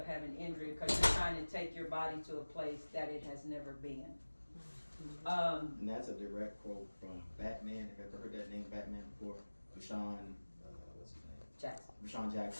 having injury because you're trying to take your body to a place that it has never been. And that's a direct quote from Batman. Have you ever heard that name, Batman, before? Rashawn, what's his name? Jackson. Rashawn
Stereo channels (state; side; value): inverted; both; correlation -1.00